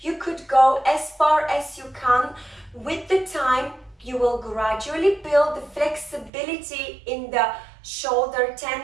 You could go as far as you can. With the time, you will gradually build the flexibility in the shoulder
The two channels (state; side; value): drops out; left; at 6.3 s